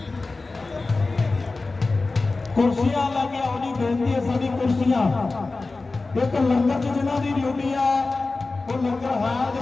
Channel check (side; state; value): right; quieter; 3.6 dB